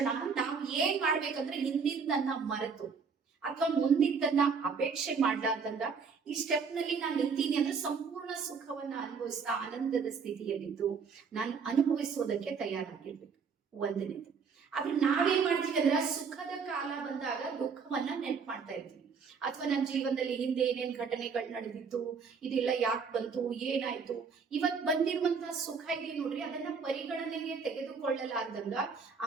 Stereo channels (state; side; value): quieter; left; 5.6 dB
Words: ನಾವು ಏನ್ ಮಾಡ್ಬೇಕಂದ್ರೆ ಹಿಂದಿನ ಮರೆತು ಅಥವಾ ಮುಂದಿದ್ದನ್ನ ಅಪೇಕ್ಷೆ ಮಾಡ್ಲಾರ್ದಂಗ ಈ ಸ್ಟೆಪ್ ನಲ್ಲಿ ನಾನು ನಿಂತೀನಿ ಅಂದ್ರೆ ಸಂಪೂರ್ಣ ಸುಖವನ್ನ ಅನುಭವಿಸ್ತಾ ಆನಂದದ ಸ್ಥಿತಿಯಲ್ಲಿದ್ದು ನಾನು ಅನುಭವಿಸೋದಕ್ಕೆ ತಯಾರಾಗಿರ್ಬೇಕು. ಒಂದನೇದು. ಆದ್ರೆ ನಾವೇನ್ ಮಾಡ್ತೀವಿ ಅಂದ್ರೆ ಸುಖದ ಕಾಲ ಬಂದಾಗ ದುಃಖವನ್ನ ನೆನ್ಪು ಮಾಡ್ತಾ ಇರ್ತೀವಿ. ಅಥವಾ ನನ್ನ ಜೀವನದಲ್ಲಿ ಹಿಂದೆ ಏನೇನ್ ಘಟನೆಗಳು ನಡೆದಿತ್ತು, ಇದೆಲ್ಲ ಯಾಕೆ ಬಂತು, ಏನಾಯ್ತು, ಇವತ್ ಬಂದಿರುವಂತಹ ಸುಖ ಇದೆ ನೋಡ್ರಿ, ಅದನ್ನ ಪರಿಗಣನೆಗೆ ತೆಗೆದುಕೊಳ್ಳಲಾರ್ದಂಗ